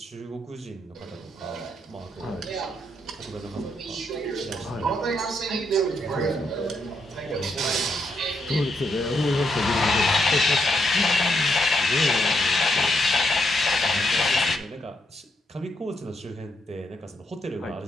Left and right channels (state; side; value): normal; both; correlation 0.78